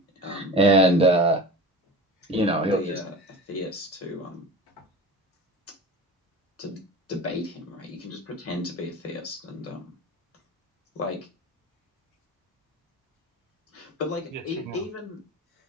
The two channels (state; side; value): normal; both; correlation 0.34